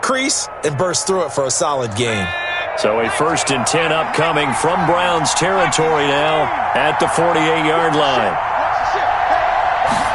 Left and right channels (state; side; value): identical; both; correlation 1.00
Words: and bursts through it for a solid gain. So a 1st and 10 upcoming from Browns territory now at the 48-yard line.